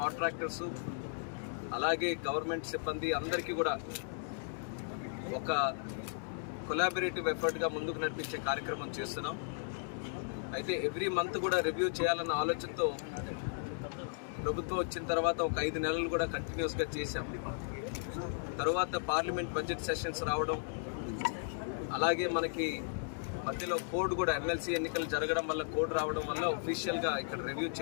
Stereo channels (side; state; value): right; silent; digital silence